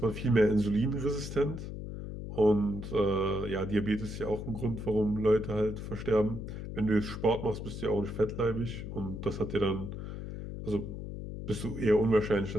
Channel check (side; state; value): left; noise; hum, 8 dB below the sound